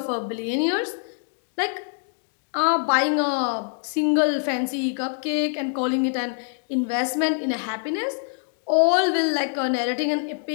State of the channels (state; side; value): silent; right; 62 dB below the other